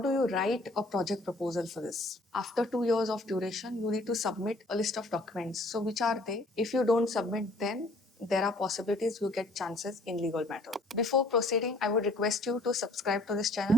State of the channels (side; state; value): both; normal; correlation 0.58